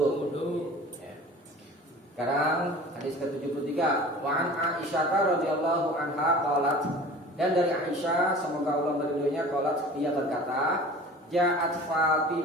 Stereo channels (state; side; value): normal; both; correlation 0.42